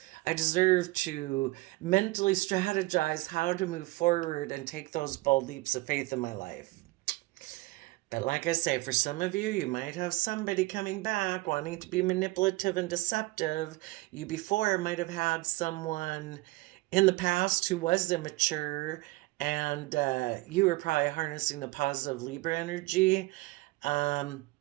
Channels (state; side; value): quieter; left; 21.6 dB